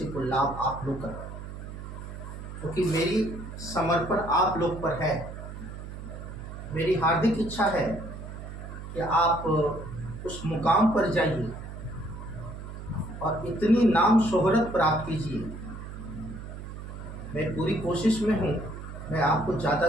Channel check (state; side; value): noise; right; hum, 10 dB below the sound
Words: को लाभ आप लोग कर, क्योंकि मेरी समर्पण आप लोग पर है। मेरी हार्दिक इच्छा है कि आप उस मुकाम पर जाइए और इतनी नाम शोहरत प्राप्त कीजिए। मैं पूरी कोशिश में हूँ, मैं आपको ज़्यादा